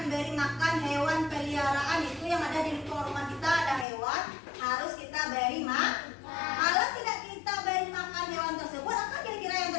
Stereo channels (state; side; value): drops out; right; at 3.9 s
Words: makan hewan peliharaan, itu yang ada di lingkungan rumah kita ada hewan, harus kita beri makan. Kalau tidak kita beri makan hewan tersebut, apa kira-kira yang